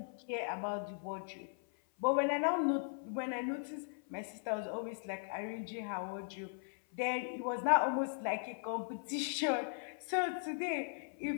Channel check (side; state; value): right; silent; 52 dB below the other